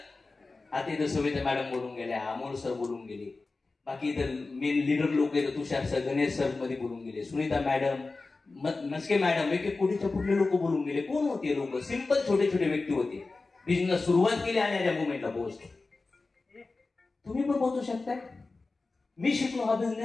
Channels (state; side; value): quieter; right; 3.7 dB